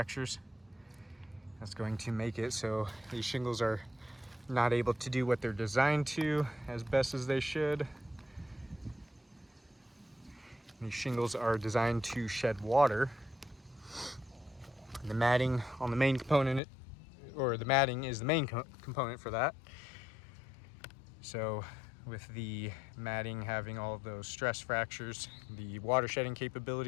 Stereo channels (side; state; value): right; drops out; at 16.6 s